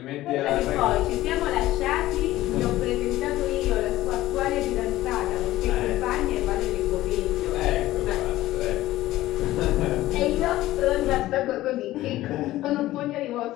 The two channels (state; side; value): quieter; right; 15.9 dB